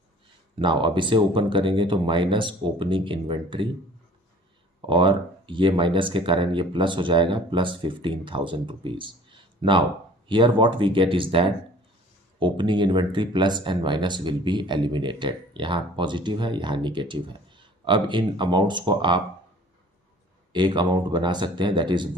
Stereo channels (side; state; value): both; normal; correlation 0.49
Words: नाउ अब इसे ओपन करेंगे तो माइनस ओपनिंग इन्वेंट्री, और ये माइनस के कारण ये प्लस हो जाएगा, plus 15,000 rupees. Now here what we get is that opening inventory plus and minus will be eliminated. यहाँ पॉजिटिव है, यहाँ निगेटिव है। अब इन अमाउंट्स को आप एक अमाउंट बना सकते हैं, that is